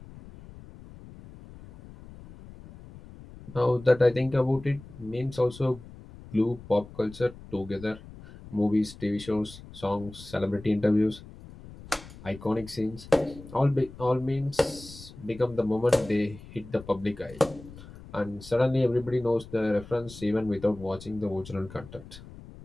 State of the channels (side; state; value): left; noise; rumble, 17 dB below the sound